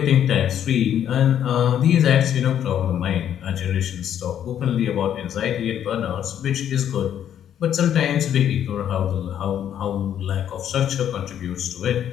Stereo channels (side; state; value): right; quieter; 9.9 dB